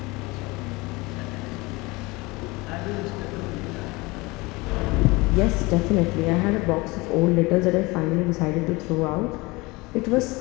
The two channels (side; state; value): right; quieter; 23.7 dB